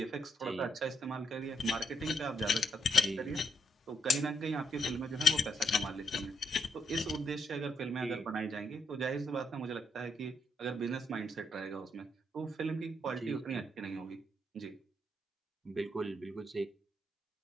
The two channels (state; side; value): normal; both; correlation 0.77